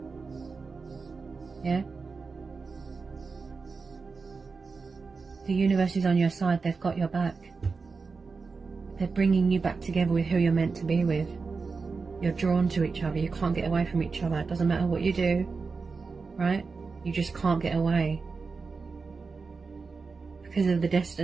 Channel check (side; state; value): left; quieter; 4.6 dB